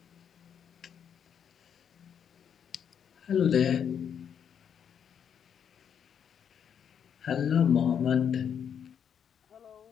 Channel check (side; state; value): right; quieter; 8.0 dB